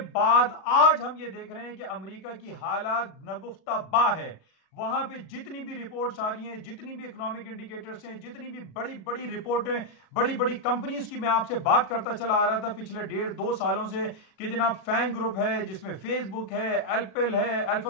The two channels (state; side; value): late; right; 39 ms